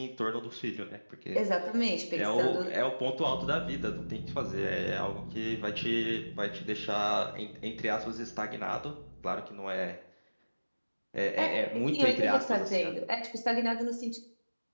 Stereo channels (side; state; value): both; inverted; correlation -1.00